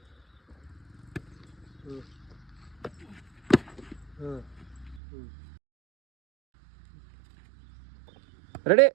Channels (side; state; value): left; drops out; at 5.0 s